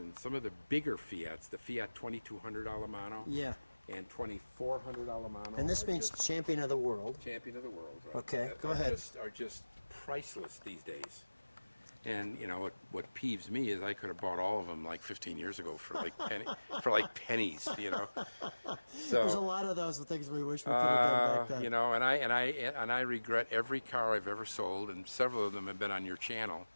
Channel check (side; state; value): both; inverted; correlation -1.00